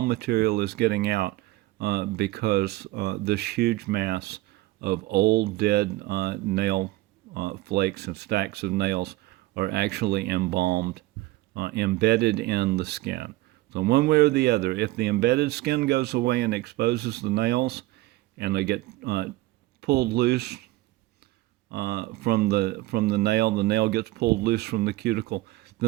material is getting out, because this huge mass of old dead nail flakes and stacks of nails are actually embalmed, embedded in the skin. So one way or the other, if the embedded skin goes away and exposes the nails, and they get pulled loose from the nail gets pulled loose from the cuticle,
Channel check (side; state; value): left; quieter; 18.4 dB